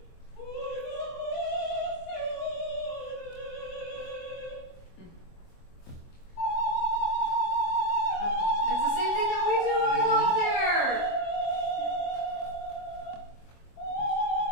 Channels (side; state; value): right; late; 23 ms